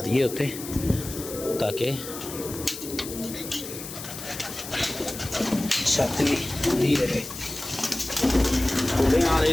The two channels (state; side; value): noise; left; hiss, 10 dB below the sound